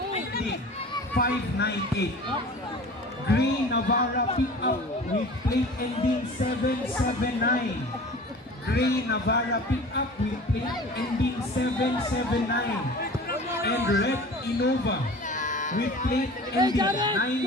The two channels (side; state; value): both; normal; correlation 0.40